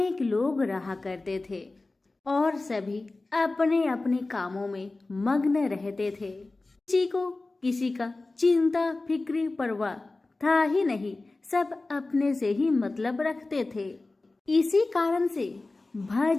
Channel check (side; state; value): right; quieter; 3.2 dB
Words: लोग रहा करते थे और सभी अपने अपने कामों में मग्न रहते थे। किसी को किसी का चिंता फिक्री परवाह था ही नहीं, सब अपने से ही मतलब रखते थे। इसी कारण से